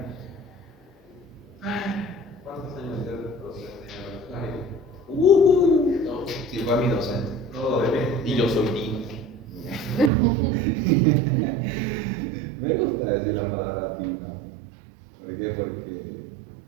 ¿Cuántos años de docente? Sí, fue mi docente. Todo bebé. Y yo soy Dino. Me gusta decir la palabra Dino. ¿Por qué? Porque,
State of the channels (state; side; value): drops out; left; at 10.1 s